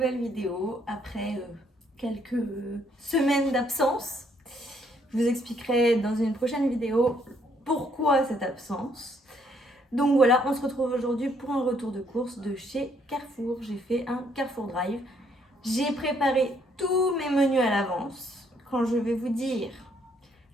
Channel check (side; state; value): both; normal; correlation 0.69